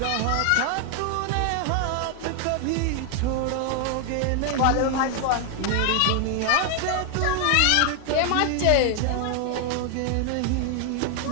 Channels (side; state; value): both; different; correlation 0.00